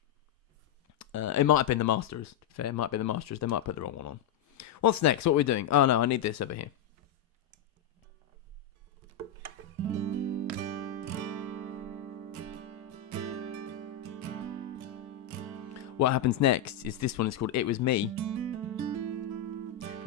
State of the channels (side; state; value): right; quieter; 8.1 dB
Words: It might have been the Masters. Fair, it might be the Masters. They might put the wrong one on. What's next? What are we doing? Oh no, I need this over here. What happens next is this one is called It Was Me.